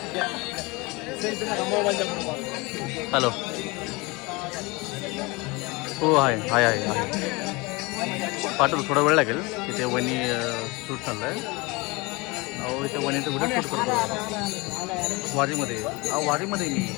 हॅलो. हो आहे आहे आहे आहे. पाठवतो, थोडा वेळ लागेल. इथे वणी शूट चाललं आहे. अहो इथे वणीचं व्हिडिओ शूट करतो वारीमध्ये. अहो वारीमध्ये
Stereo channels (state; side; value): quieter; right; 25.3 dB